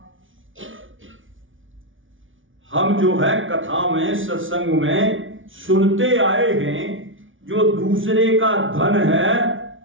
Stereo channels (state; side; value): late; left; 0.57 ms